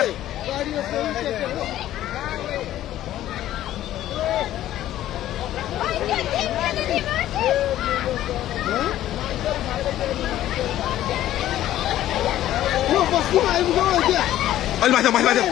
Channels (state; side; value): quieter; right; 13.2 dB